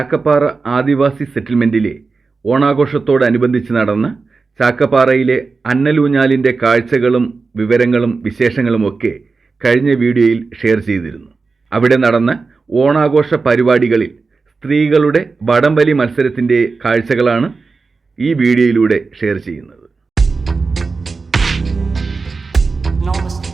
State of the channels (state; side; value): quieter; left; 4.3 dB